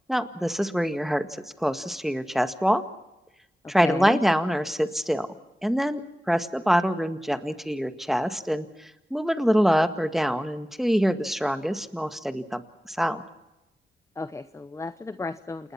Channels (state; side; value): normal; both; correlation 0.96